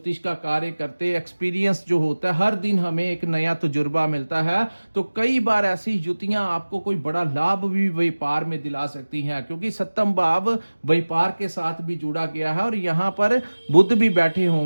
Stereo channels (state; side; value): inverted; both; correlation -1.00